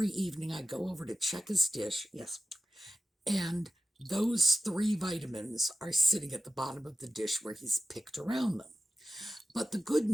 evening I go over to check his dish, yes, and those 3 vitamins are sitting at the bottom of the dish where he's picked around them. But the good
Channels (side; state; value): both; normal; correlation 0.91